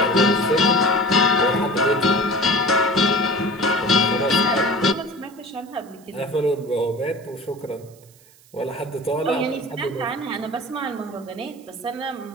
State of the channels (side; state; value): right; noise; hiss, 27 dB below the sound